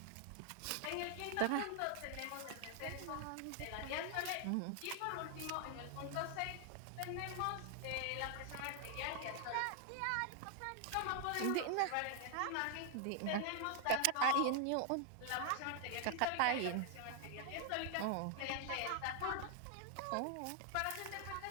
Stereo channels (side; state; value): both; different; correlation 0.00